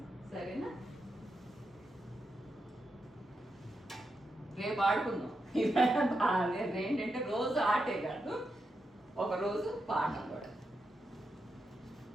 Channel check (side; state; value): both; normal; correlation 0.86